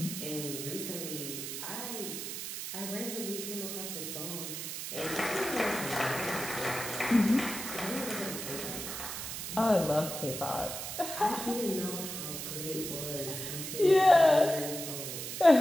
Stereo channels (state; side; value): noise; right; hiss, 6 dB below the sound